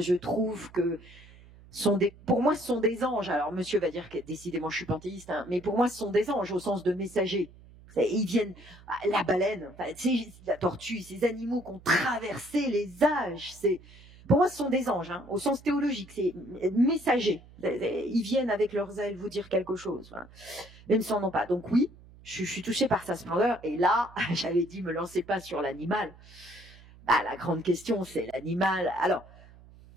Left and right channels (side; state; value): right; noise; hum, 22 dB below the sound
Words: trouve que pour moi, ce sont des anges. Alors, monsieur va dire que décidément, je suis panthéiste, hein, mais pour moi, ce sont des anges au sens de messagers. Ils viennent, la baleine, la tortue, ces animaux qui ont traversé les âges, pour moi, ce sont des anges, hein, au sens théologique, c'est messagers. Ils viennent avec leurs ailes vous dire quelque chose. Voilà. Mais ils ne s'en ont pas. Donc oui, je suis touchée par sa splendeur. Et là, j'avais dit, me lancez pas sur l'animal. La grande question, c'est l'animal. Alors,